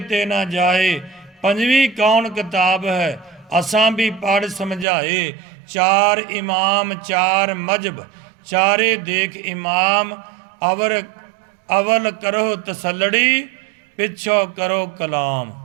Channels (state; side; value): drops out; left; at 4.9 s